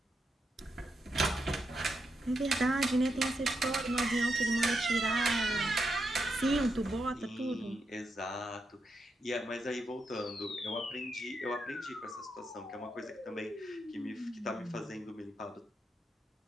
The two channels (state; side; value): normal; both; correlation 0.83